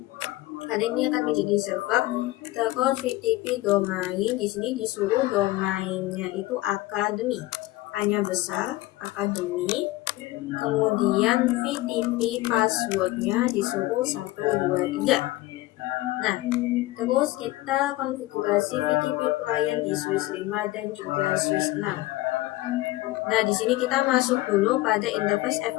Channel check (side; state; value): right; quieter; 18.2 dB